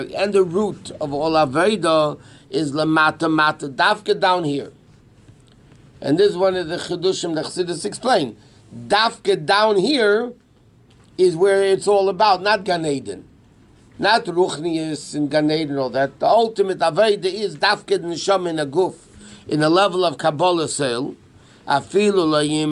and the root of all aveda is lamata mata dafka down here. And this is one of the Chidushim that Chassidus explain. Dafka down here is where it's all about, not Gan Eden. Not Ruchnius and Gan Eden and all that. The ultimate Aveda is Dafka Neshama in a guf, in a level of Kabbalah sale. Afilu la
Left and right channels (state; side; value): identical; both; correlation 1.00